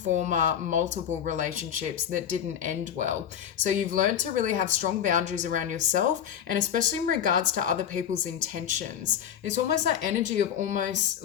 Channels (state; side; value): quieter; right; 9.2 dB